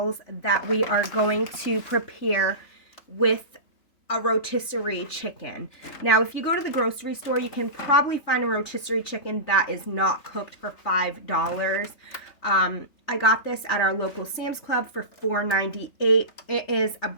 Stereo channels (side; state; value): right; late; 3.4 ms